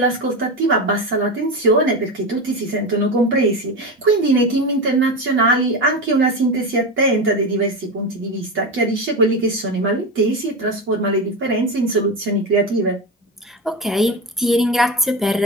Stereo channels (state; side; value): normal; both; correlation 0.20